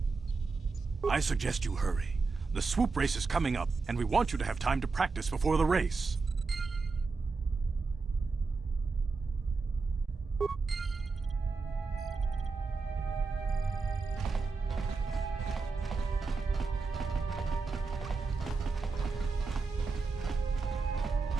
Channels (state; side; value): quieter; left; 4.3 dB